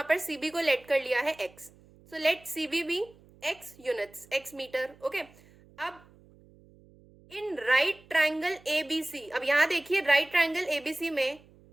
पर CB को लेट कर लिया है X. So let CB be X units, X metre. Okay, अब इन राइट ट्राइंगल ABC, अब यहाँ देखिए राइट ट्राइंगल ABC में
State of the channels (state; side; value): noise; right; hum, 26 dB below the sound